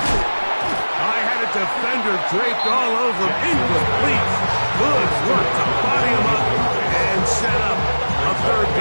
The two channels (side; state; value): both; inverted; correlation -1.00